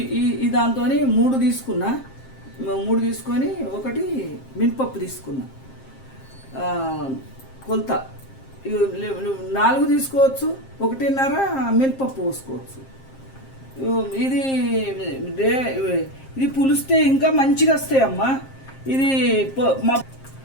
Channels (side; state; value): right; late; 7.5 ms